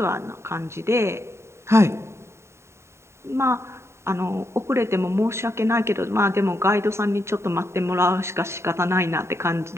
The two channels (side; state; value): left; late; 0.13 ms